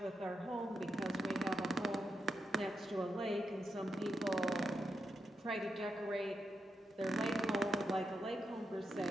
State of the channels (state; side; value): normal; both; correlation 0.86